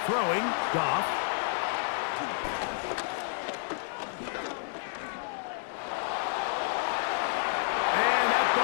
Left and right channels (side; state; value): right; silent; digital silence